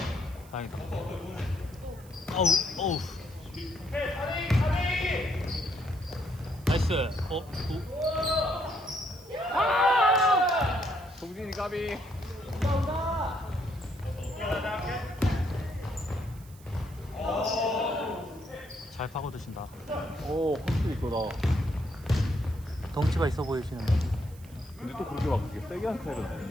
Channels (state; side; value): noise; right; hiss, 24 dB below the sound